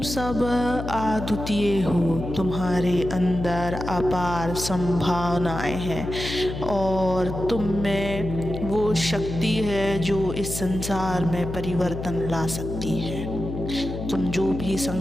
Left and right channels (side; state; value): left; noise; hum, 6 dB below the sound